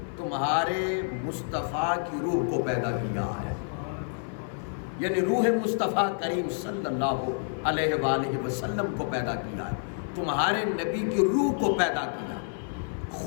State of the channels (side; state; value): right; silent; 56 dB below the other